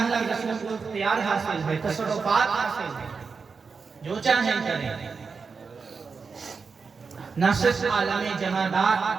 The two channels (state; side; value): quieter; left; 5.1 dB